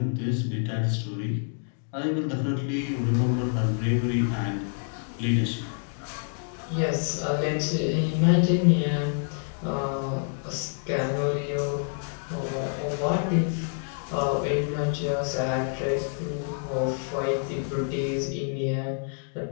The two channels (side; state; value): right; silent; 60 dB below the other